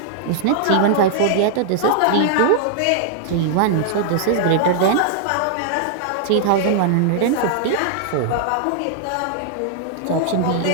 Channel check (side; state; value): both; different; correlation -0.01